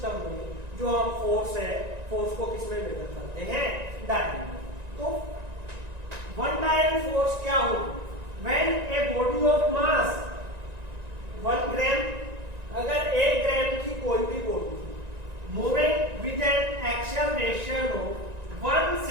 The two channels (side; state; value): left; late; 1.9 ms